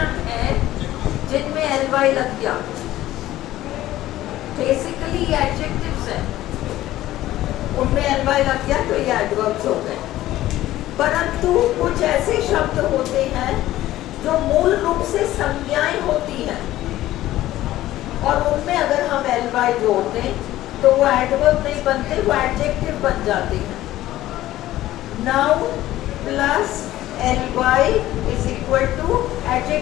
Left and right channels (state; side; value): quieter; right; 14.9 dB